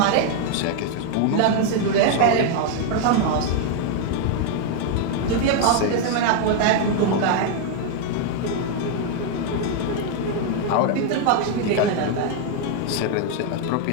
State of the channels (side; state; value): both; different; correlation 0.00